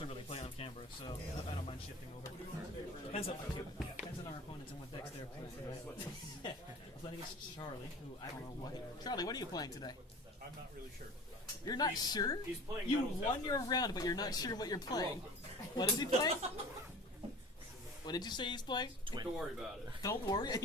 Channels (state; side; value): normal; both; correlation 0.40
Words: really play on camera, so I don't mind shifting over. Depends on our opponents and what decks they're playing. Right? I'm playing against Charlie, who I don't know what. Charlie, what are you playing today? I'm not really sure. You're not sure? He's playing You Metal won your round, but you're not sure what you're playing. What is he playing? What did you say he's playing? Don't worry about it. Don't worry,